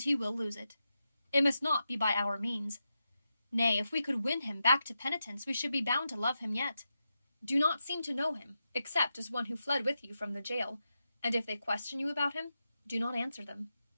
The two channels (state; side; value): inverted; both; correlation -0.88